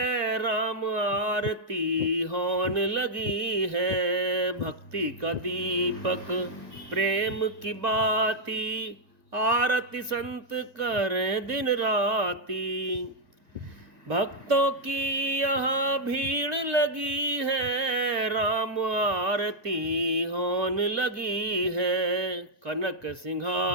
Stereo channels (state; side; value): late; left; 1.9 ms